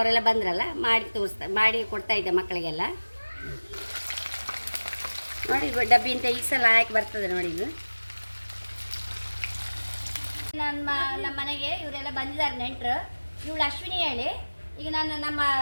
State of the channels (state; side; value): inverted; both; correlation -1.00